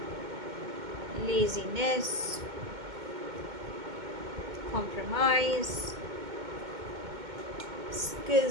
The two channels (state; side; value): late; left; 2.2 ms